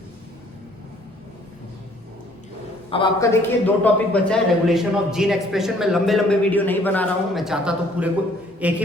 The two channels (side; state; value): both; normal; correlation 0.60